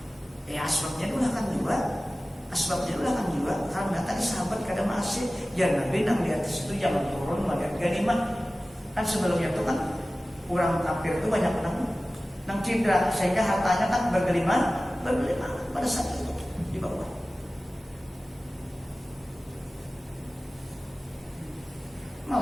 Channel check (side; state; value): both; normal; correlation 0.96